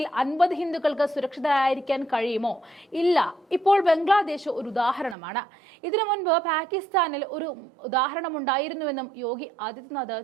50 ഹിന്ദുക്കൾക്ക് സുരക്ഷിതരായിരിക്കാൻ കഴിയുമോ? ഇല്ല. ഇപ്പോൾ ബംഗ്ലാദേശ് ഒരു ഉദാഹരണമാണ്. ഇതിനു മുൻപ് പാകിസ്ഥാനിൽ ഒരു ഉദാഹരണമുണ്ടായിരുന്നുവെന്നും യോഗി ആദിത്യനാഥ്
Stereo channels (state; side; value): drops out; left; at 5.2 s